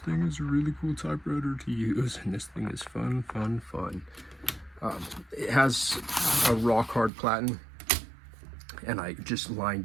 is a really cool typewriter to use, and this thing is fun. It has a rock hard platen, and I just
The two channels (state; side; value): drops out; left; at 7.1 s